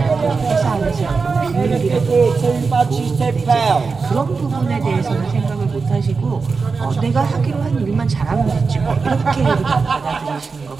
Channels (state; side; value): quieter; left; 4.7 dB